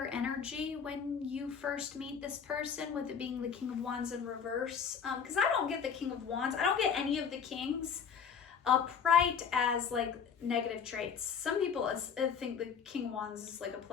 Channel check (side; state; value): right; quieter; 6.8 dB